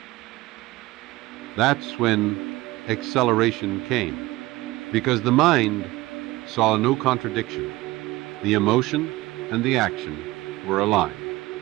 That's when acceleration came, because the mind saw no contradiction. The emotion and the action were aligned.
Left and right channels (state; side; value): quieter; left; 19.2 dB